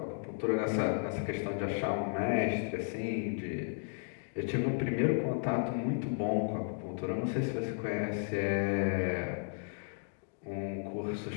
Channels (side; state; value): right; silent; digital silence